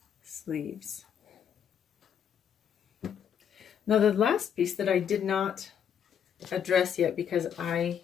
sleeves. Now the last piece that I did not address yet, because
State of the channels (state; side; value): quieter; right; 8.4 dB